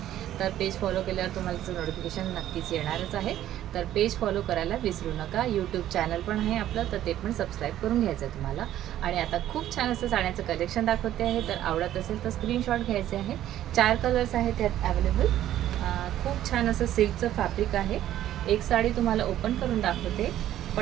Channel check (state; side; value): quieter; left; 12.4 dB